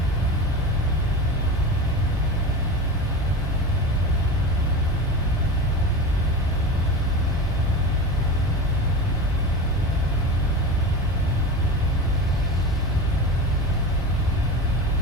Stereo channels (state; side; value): normal; both; correlation 0.28